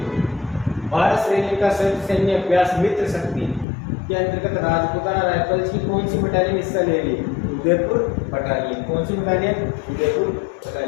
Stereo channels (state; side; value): drops out; right; at 3.7 s